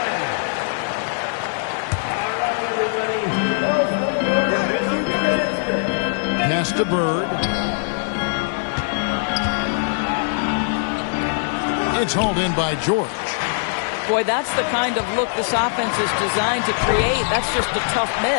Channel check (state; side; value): silent; right; 55 dB below the other